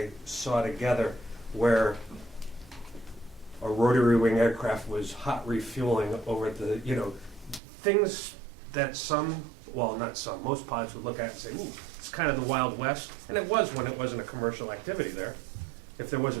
saw together where a rotary wing aircraft was hot refueling over at the, you know, things that most pilots would look at and say, ooh, it's kind of the Wild West. And it was when it wasn't a commercial activity there. If there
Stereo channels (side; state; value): left; drops out; at 7.6 s